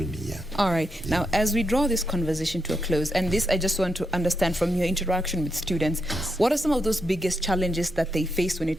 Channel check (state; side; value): normal; both; correlation 0.83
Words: me. Yeah. All right. Yeah. Now, as we draw this conversation to a close, and this I just want to understand from your interaction with students, what are some of those biggest challenges that they face when